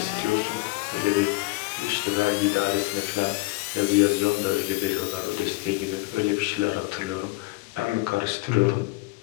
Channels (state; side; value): quieter; right; 22.3 dB